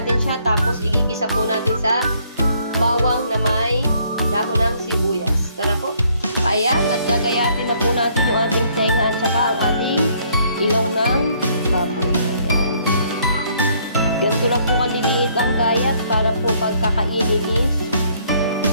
siya. Tapos igigisa po natin sa bawang na may dahon ng sibuyas. Tara po. Ayan, at gagayatin na po natin yung ating tenga at saka ang ating ilong ng baboy. Ayan. Ganito lang po kaliliit ang gayat para po pagkakainin is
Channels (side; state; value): both; inverted; correlation -0.66